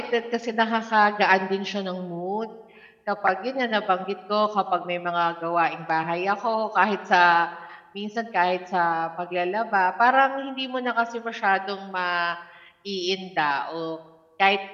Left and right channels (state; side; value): identical; both; correlation 1.00